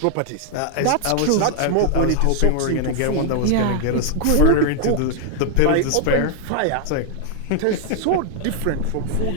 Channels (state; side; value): different; both; correlation 0.00